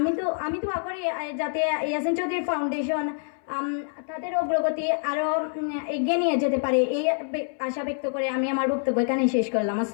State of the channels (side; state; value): right; silent; 59 dB below the other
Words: দোয়া করি যাতে ইয়াসিন চৌধুরী ফাউন্ডেশন তাদের অগ্রগতি আরো এগিয়ে নিয়ে যেতে পারে, এই আশা ব্যক্ত করে আমি আমার বক্তব্য এখানে শেষ করলাম।